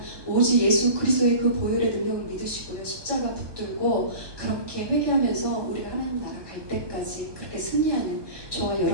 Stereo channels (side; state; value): left; late; 1.2 ms